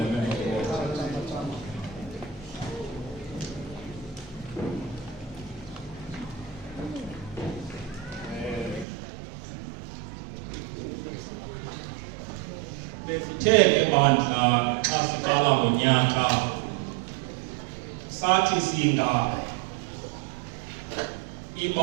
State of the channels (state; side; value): drops out; left; at 8.8 s